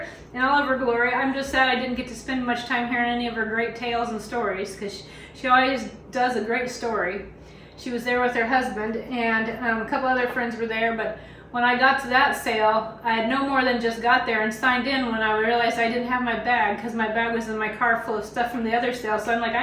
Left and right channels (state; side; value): identical; both; correlation 1.00